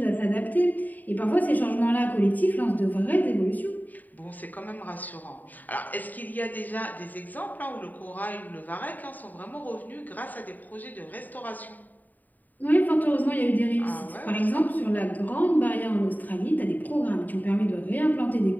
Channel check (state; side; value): late; right; 0.085 ms